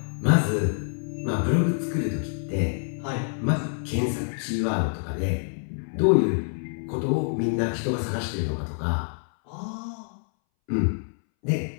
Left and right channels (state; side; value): silent; right; 61 dB below the other